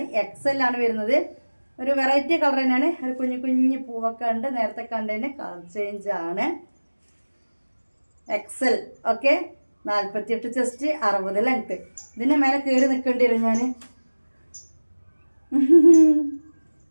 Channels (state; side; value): inverted; both; correlation -1.00